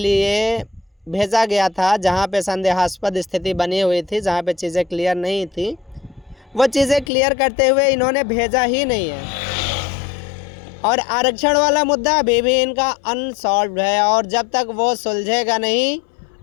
भेजा गया था, जहाँ पे संदेहास्पद स्थिति बनी हुई थी, जहाँ पे चीज़ें क्लियर नहीं थी, वो चीज़ें क्लियर करते हुए इन्होंने भेजा ही नहीं है। और आरक्षण वाला मुद्दा अभी भी इनका अनसॉल्व्ड है, और जब तक वो सुलझेगा नहीं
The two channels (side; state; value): right; drops out; at 7.1 s